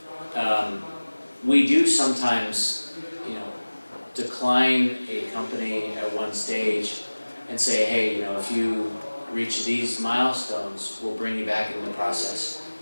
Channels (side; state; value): both; inverted; correlation -1.00